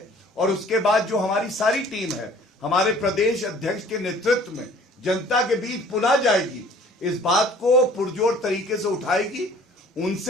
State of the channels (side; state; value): both; normal; correlation 0.52